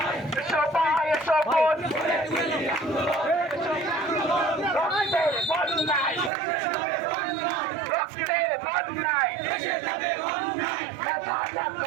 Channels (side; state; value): left; drops out; at 6.3 s